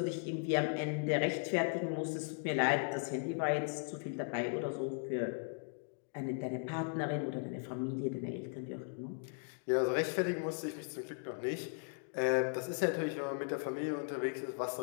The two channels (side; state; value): right; silent; 53 dB below the other